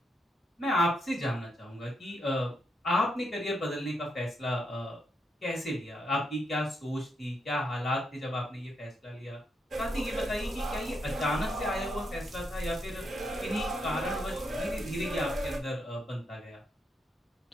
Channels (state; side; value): normal; both; correlation 0.80